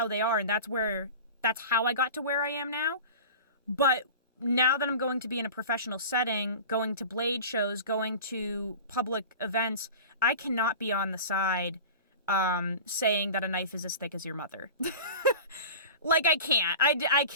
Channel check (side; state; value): both; inverted; correlation -0.35